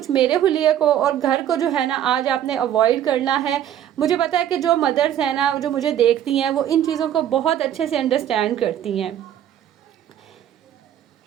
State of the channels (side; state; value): left; quieter; 10.7 dB